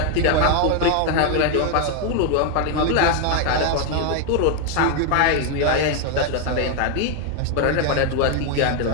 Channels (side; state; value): both; different; correlation 0.01